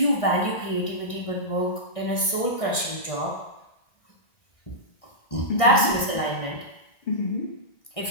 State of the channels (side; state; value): right; late; 1.6 ms